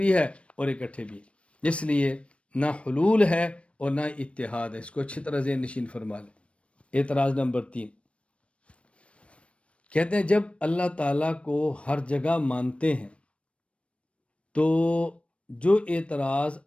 ہے اور اکٹھے بھی. اس لیے نہ حلول ہے اور نہ اتحاد ہے. اس کو اچھی طرح ذہن نشین فرما لیں. اعتراض نمبر 3، کہتے ہیں جب اللہ تعالیٰ کو ہر جگہ مانتے ہیں تو جو اعتراض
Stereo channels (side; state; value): right; late; 0.061 ms